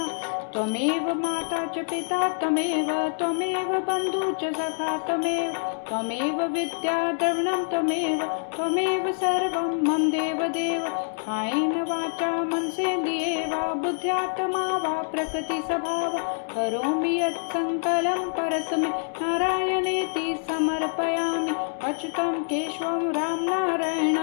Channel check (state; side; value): silent; right; digital silence